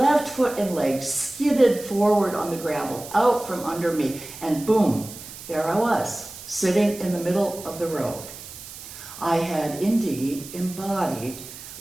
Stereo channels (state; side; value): noise; right; hiss, 14 dB below the sound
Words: foot and leg skidded forward on the gravel, out from under me, and boom, there I was, sitting in the middle of the road. I had indeed embodied